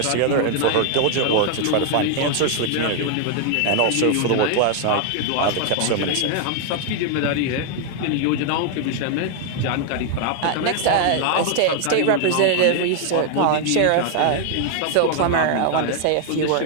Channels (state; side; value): different; both; correlation 0.00